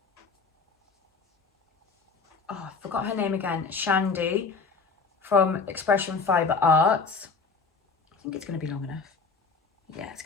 oh, I forgot her name again, Shandy from Expression Fibre Arts. I think it's going to be long enough. Yeah, it's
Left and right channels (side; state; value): right; quieter; 4.7 dB